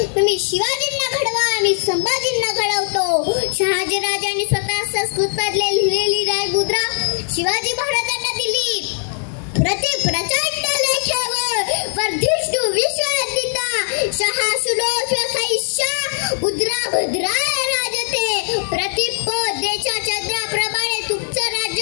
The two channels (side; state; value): right; silent; 66 dB below the other